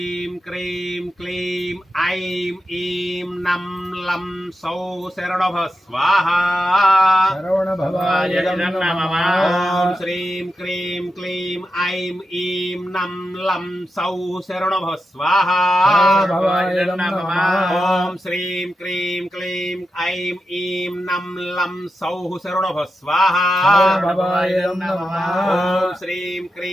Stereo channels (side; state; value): both; normal; correlation 0.89